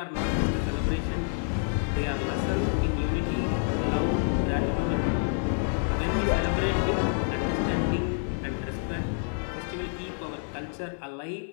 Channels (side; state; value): right; silent; 59 dB below the other